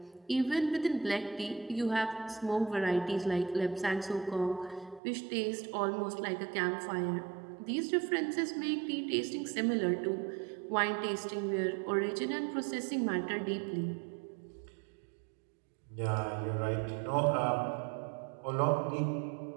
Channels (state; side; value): drops out; left; at 5.0 s